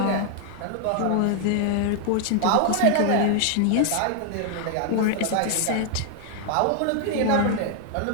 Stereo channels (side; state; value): both; different; correlation 0.00